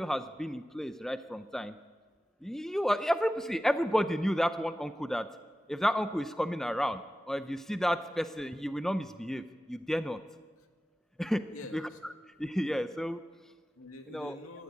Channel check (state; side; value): normal; both; correlation 0.95